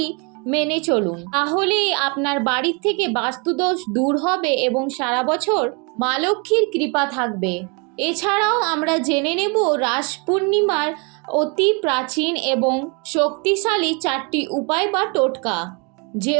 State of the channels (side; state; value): left; quieter; 32.2 dB